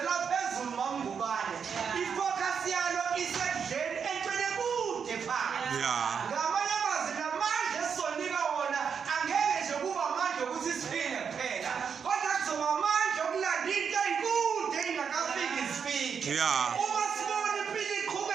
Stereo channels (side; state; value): left; quieter; 6.7 dB